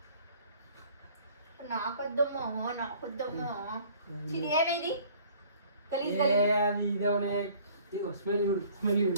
నాకొద్దమ్మో నాకొద్దమ్మో. ఇది ఏమైంది?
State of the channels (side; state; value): both; inverted; correlation -0.53